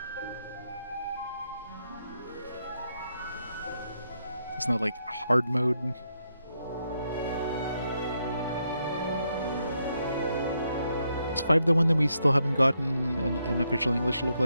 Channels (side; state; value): both; inverted; correlation -0.79